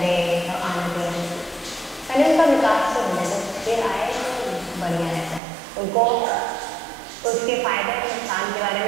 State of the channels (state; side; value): drops out; left; at 5.4 s